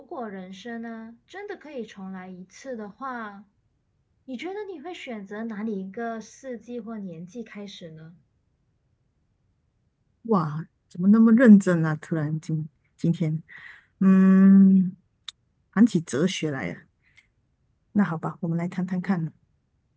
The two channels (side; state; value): both; identical; correlation 1.00